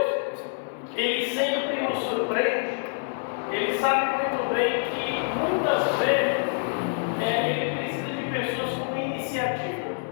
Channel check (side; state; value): right; silent; digital silence